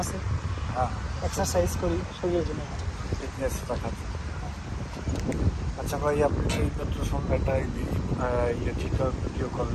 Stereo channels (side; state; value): both; identical; correlation 1.00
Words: আছে, হ্যাঁ, এক্সারসাইজ করি, শরীরের জন্য ভালো। ফিটনেস রাখাচ্ছি। আচ্ছা ভাই, আপনি এই মাত্র সঙ্গে একটা ঠিক ভিডিও